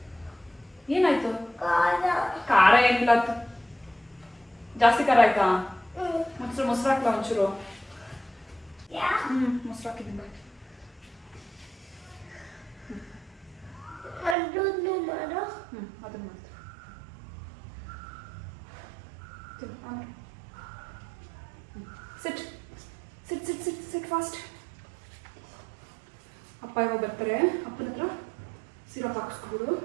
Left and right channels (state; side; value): drops out; left; at 14.4 s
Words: ಏನಾಯ್ತು? ಖಾರ ಏನಿಲ್ಲ. ಜಾಸ್ತಿ ಖಾರ ಆಯ್ತಾ? ಮೊಸರು ಹಾಕ್ಲಾ ಒಂಚೂರು? ಮೊಸರು ಹಾಕಿದ್ದೀನಿ. ಅದನ್ನ ಮಾಡ್ತೀನಿ. ಸಿಟ್ ಸಿಟ್ ಸಿಟ್ ಸಿಟ್ ಸಿಟ್ ಫಾಸ್ಟ್. ಅಪ್ಪ ಇವಾಗ ಬರ್ತಾರೆ. ಅಪ್ಪನ ಹತ್ರ ಸಿರಪ್ ಹಾಕಿಸ್ಕೊಬಿಡು.